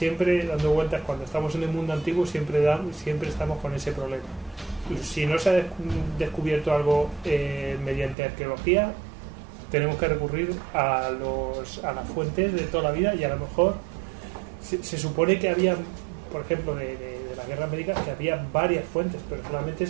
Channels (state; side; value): drops out; left; at 8.2 s